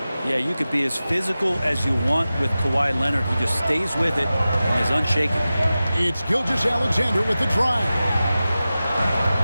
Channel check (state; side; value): inverted; both; correlation -0.95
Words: Yeah, you could be as physical as you want with Kawhi Leonard. He just stays with it and is unshaken. It's Gilgeous-Alexander with the drive.